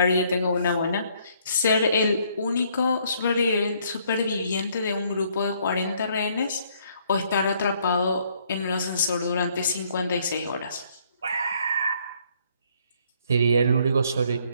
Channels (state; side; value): inverted; both; correlation -0.66